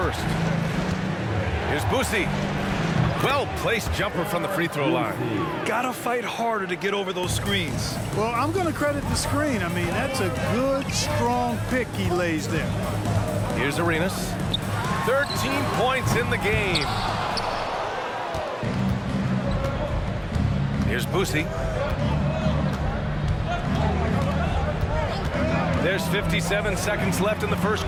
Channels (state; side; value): identical; both; correlation 1.00